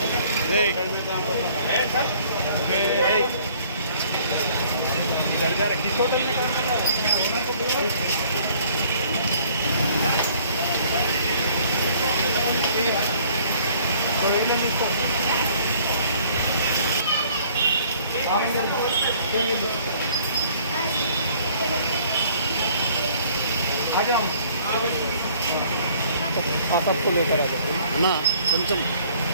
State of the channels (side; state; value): both; inverted; correlation -0.57